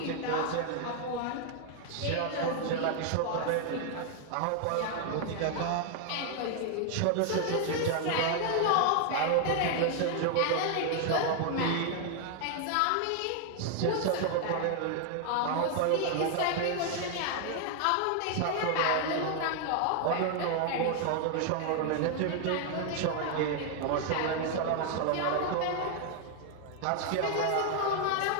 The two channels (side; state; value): both; different; correlation 0.00